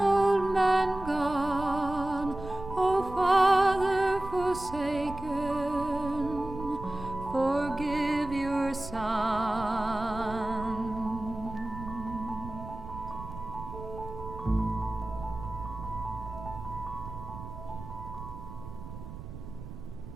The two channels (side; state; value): right; noise; rumble, 11 dB below the sound